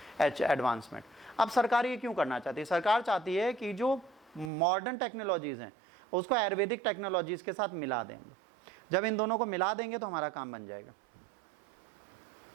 advancement। अब सरकार ये क्यों करना चाहती है? सरकार चाहती है कि जो मॉडर्न टेक्नोलॉजीज हैं उसको आयुर्वेदिक टेक्नोलॉजीज के साथ मिला देंगे। जब इन दोनों को मिला देंगे तो हमारा काम बन जाएगा।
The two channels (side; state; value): left; drops out; at 4.5 s